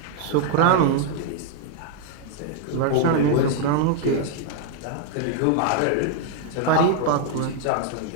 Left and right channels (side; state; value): both; different; correlation 0.00